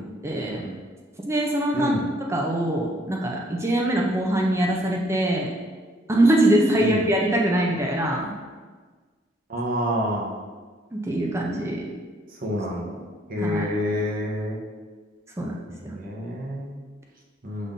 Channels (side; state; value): both; normal; correlation 0.66